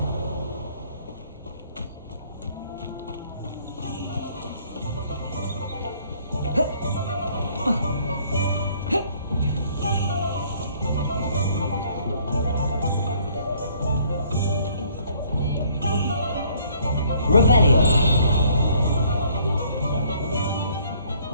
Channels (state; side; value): inverted; both; correlation -0.61